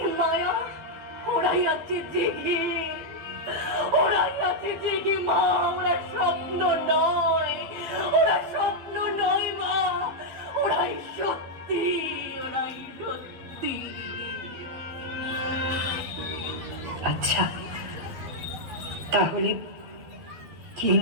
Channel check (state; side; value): late; left; 12 ms